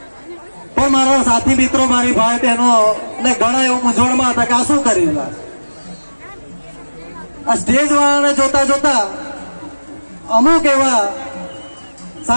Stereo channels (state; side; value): inverted; both; correlation -1.00